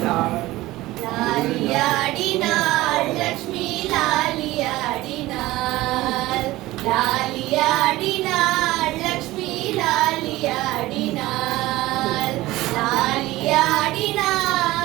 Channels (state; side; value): quieter; left; 17.9 dB